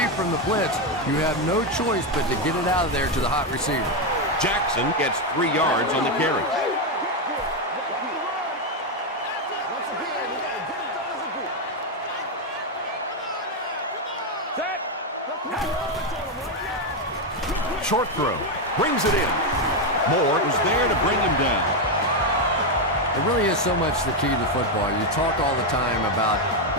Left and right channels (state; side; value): normal; both; correlation 0.06